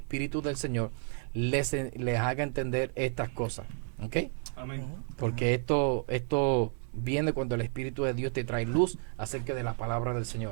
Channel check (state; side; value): silent; left; 57 dB below the other